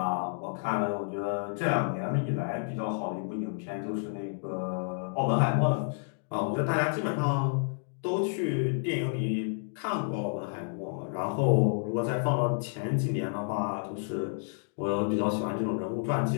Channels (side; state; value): right; silent; digital silence